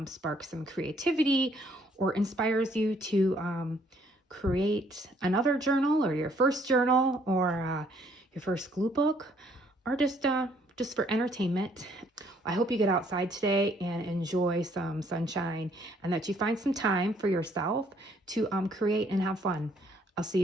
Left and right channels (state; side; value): normal; both; correlation 0.65